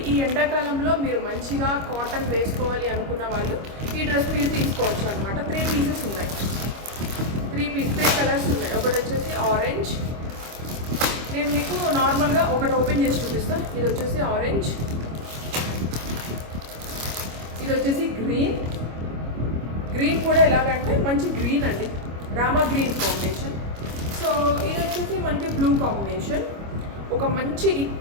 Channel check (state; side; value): late; left; 25 ms